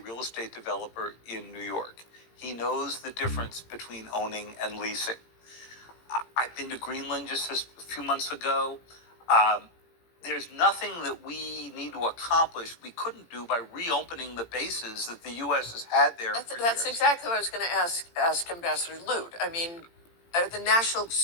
estate developer in New York. He knows the difference between owning and leasing. I've been to Greenland just a few months ago. There's nothing that we need to accomplish we couldn't do by reopening the bases that the U.S. has had there for That's years. exactly what I was going to ask Ambassador Lute. I mean, the national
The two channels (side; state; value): right; late; 18 ms